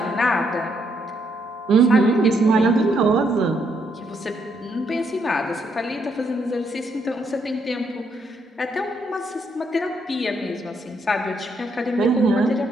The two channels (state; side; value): normal; both; correlation 0.74